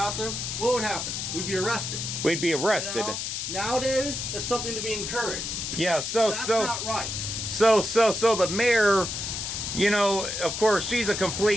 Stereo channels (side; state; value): left; noise; hiss, 4 dB below the sound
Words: what would happen? We'd be arrested. We'd be arrested. You know? Nowadays, it's something to be encouraged. Yeah, That's not right. So the mayor, you know, of course, she's a